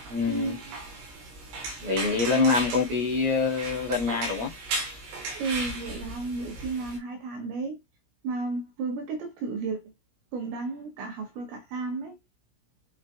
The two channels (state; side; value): late; left; 17 ms